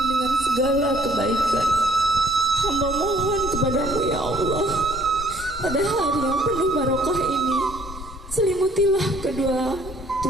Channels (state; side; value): normal; both; correlation 0.60